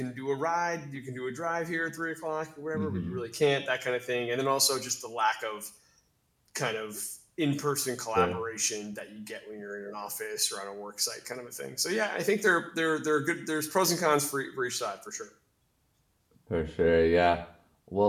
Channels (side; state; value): both; identical; correlation 1.00